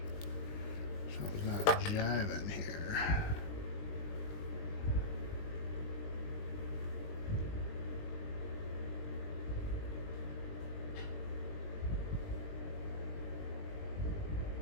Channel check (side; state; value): right; late; 20 ms